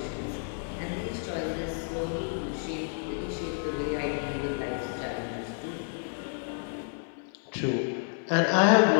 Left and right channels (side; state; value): right; silent; 57 dB below the other